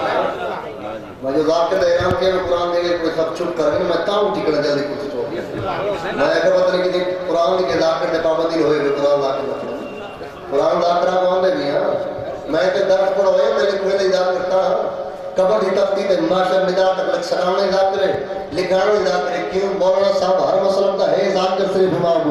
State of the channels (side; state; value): both; identical; correlation 1.00